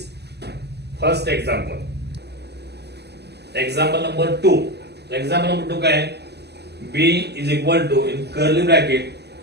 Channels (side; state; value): left; late; 0.49 ms